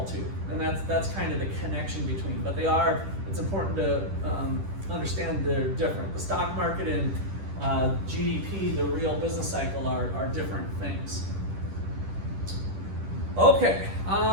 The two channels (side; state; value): left; late; 10 ms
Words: too. And that's kind of the connection between. But they are, it's important to understand they're different. The stock market and GDP, the real business cycle, are different things. Okay.